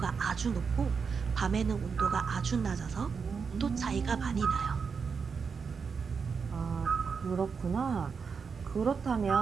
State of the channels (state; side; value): quieter; left; 5.7 dB